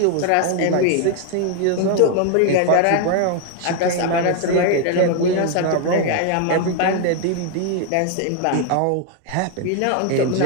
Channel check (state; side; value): different; both; correlation 0.00